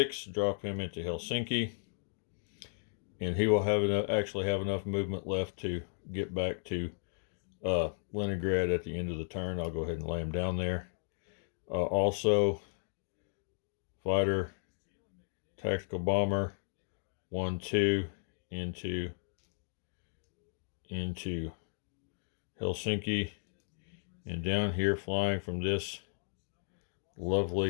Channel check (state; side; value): silent; right; digital silence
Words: drop him into Helsinki, and he will actually have enough movement left to get back to Leningrad at the end of the turn. I'll go ahead and lay him down there. Also, fighter, tactical bomber, 1, 2, into Helsinki, and down here flying from this